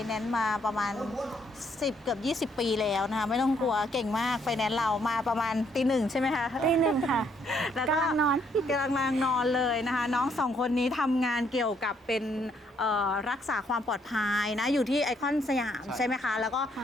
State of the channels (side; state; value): both; normal; correlation 0.70